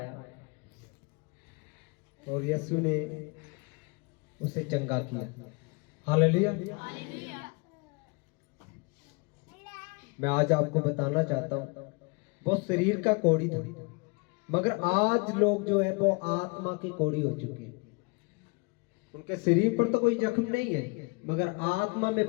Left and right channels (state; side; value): quieter; right; 30.5 dB